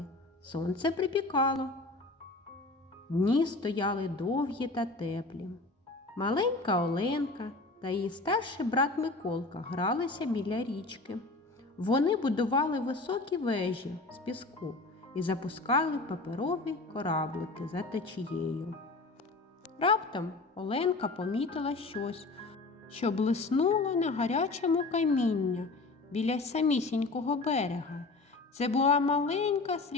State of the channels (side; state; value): right; quieter; 3.4 dB